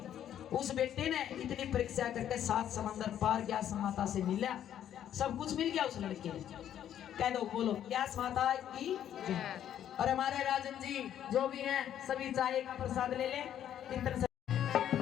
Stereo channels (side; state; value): right; quieter; 10.5 dB